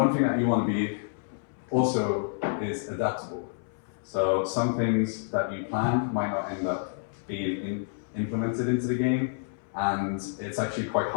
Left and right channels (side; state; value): right; silent; 59 dB below the other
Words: thing that you want to be also is adaptable. So some things that you plan might not end up being implemented into the game, and it's actually quite